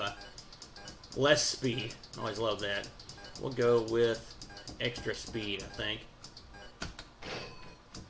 I? Less speed. I always love that. We'll go with extra speed, I think,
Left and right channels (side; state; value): both; identical; correlation 1.00